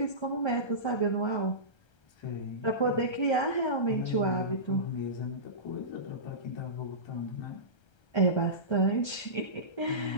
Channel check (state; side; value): late; right; 1.3 ms